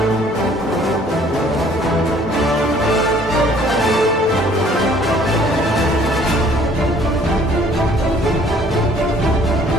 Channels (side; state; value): both; normal; correlation 0.57